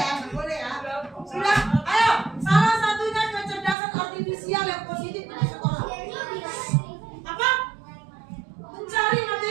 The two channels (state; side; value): drops out; left; at 3.8 s